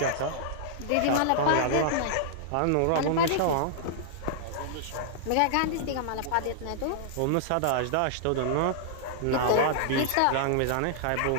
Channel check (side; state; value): both; different; correlation -0.01